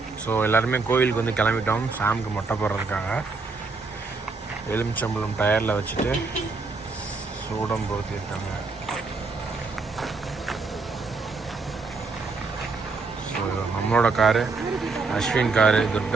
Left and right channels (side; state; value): left; quieter; 4.1 dB